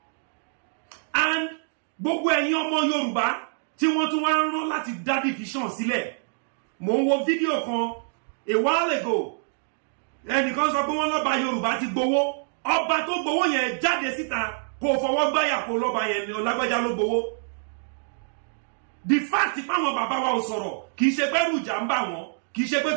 And gbogbo ẹ̀yin ọmọ Yorùbá tí wọ́n tún wá ń rán láti dá division sílẹ̀. Mo ń wo fídíò kan a while ago. Ẹnìkan sọ pé wọ́n lọ́ba Yorùbá ti gbowó. Ọba tó gbowó yẹn jáde síta kó fọwọ́ gbáyà kó lọ́ba yẹn ni Ọlágbájá ló gbowó. The fact pé àwọn bàbá wa ò sọ̀rọ̀ kì í ṣe pé ẹ̀rù ìjà ń bà wọ́n, kì í ṣe pé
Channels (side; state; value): left; silent; digital silence